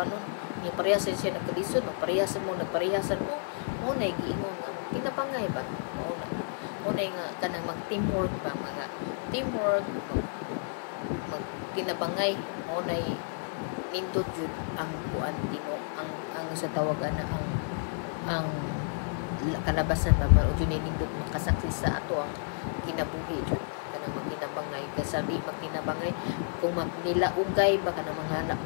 ni parehas siya nagkalisod no parehasan mo mo na giingon nga kinapangay ba mao na nga kanang mag teamwork ba, mga teamwork mag kinabangay mo na nindot jud ang kuan tino ang sa tawagan na ang kalabasan ba para jud nindot makasakli sa ato ang kinabuhi jud kanang magkinabangay kasi di magkinabangay kung magnilaugay ba kanang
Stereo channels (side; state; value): right; silent; 57 dB below the other